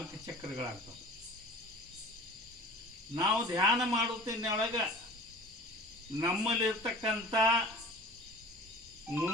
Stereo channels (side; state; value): both; normal; correlation 0.42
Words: ಚಕ್ರಗಳಾಗ್ತವೆ. ನಾವು ಧ್ಯಾನ ಮಾಡುತ್ತಿನೊಳಗೆ ನಮ್ಮಲ್ಲಿರ್ತಕ್ಕಂಥ